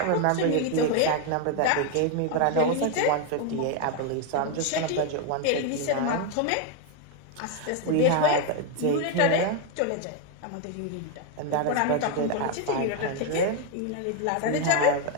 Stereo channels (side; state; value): both; different; correlation 0.01